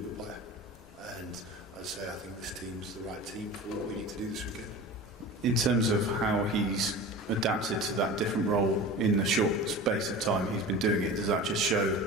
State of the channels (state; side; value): normal; both; correlation 0.34